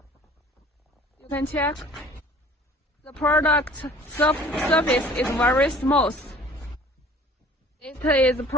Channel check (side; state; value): both; normal; correlation 0.50